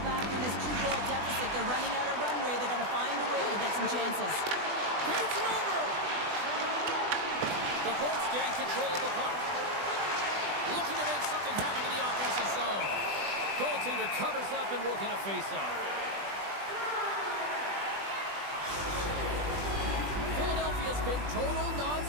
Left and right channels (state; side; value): late; left; 20 ms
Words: back in this 2-goal deficit, they're running out of runway. They got to find a way to get some chances. Feeds it over. The Bolts gain control of the puck. Looking to make something happen in the offensive zone. Goaltender covers up and will get a face-off. Philadelphia's been total